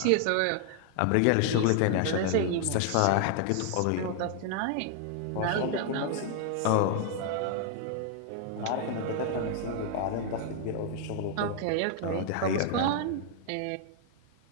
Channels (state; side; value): different; both; correlation 0.00